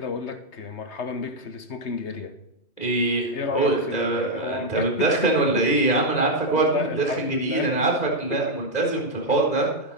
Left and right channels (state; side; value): late; right; 2.0 ms